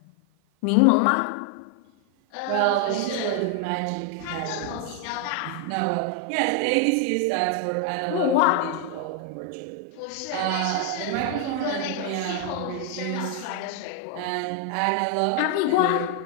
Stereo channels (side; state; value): both; different; correlation 0.00